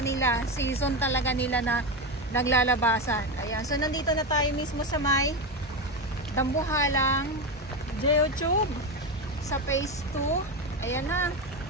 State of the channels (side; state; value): both; normal; correlation 0.16